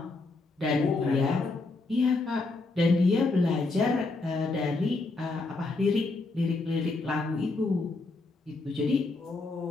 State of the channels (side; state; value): right; quieter; 3.4 dB